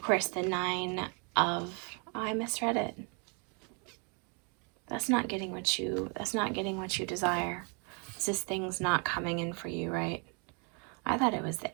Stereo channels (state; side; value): quieter; left; 35.3 dB